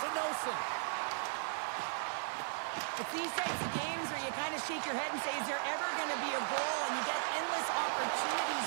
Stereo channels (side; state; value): left; silent; digital silence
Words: Nelson. It's these types of games where you kind of shake your head and say, is there ever going to be a goal? And you get endless opportunities